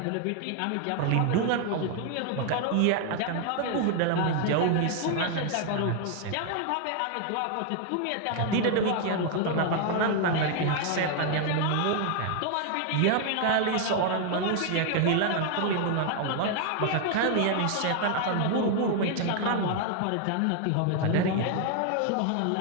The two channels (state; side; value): different; both; correlation 0.00